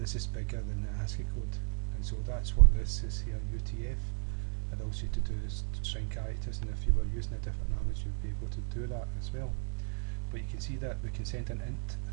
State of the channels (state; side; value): silent; left; 55 dB below the other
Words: is bigger than the ASCII code, and so that's what this is here, UTF. It allows you to do string characters, and if you were using a different language, you'd be able to do that as well. But you can see that we can send an int.